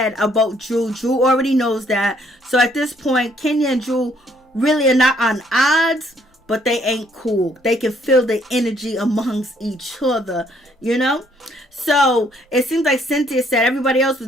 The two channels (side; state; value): both; normal; correlation 0.66